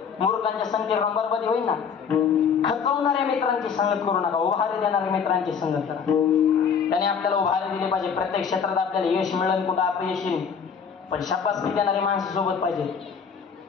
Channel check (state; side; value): quieter; right; 6.6 dB